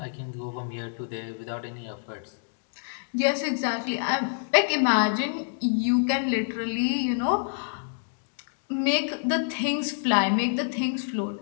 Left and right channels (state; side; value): silent; right; digital silence